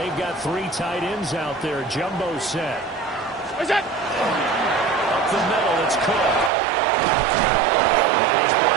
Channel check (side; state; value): left; drops out; at 6.5 s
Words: got 3 tight ends out there. Jumbo set. What's that? Up the middle, it's Cook. And he's